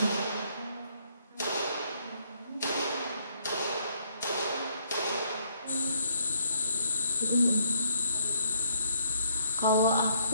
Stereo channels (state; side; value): inverted; both; correlation -0.68